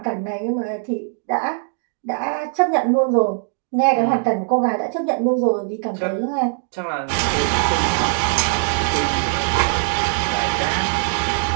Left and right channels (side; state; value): left; silent; digital silence